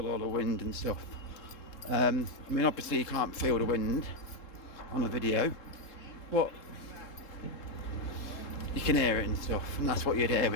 all the wind and stuff. I mean, obviously you can't feel the wind on a video, but you can hear it and stuff, and that's what you'd hear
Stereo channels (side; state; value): right; late; 3.7 ms